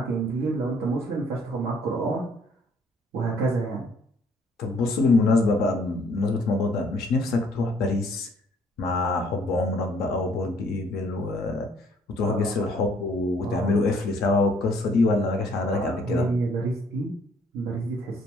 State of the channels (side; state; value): both; normal; correlation 0.63